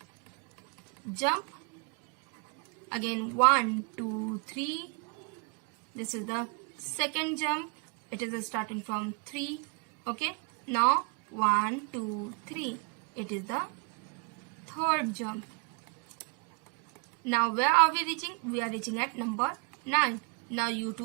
jump, again 1 2 3, this is the second jump, it is starting from 3. Okay, now 1 2 3, it is the third jump. Now where are we reaching? We are reaching at number 9. Now you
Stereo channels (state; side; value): quieter; left; 37.0 dB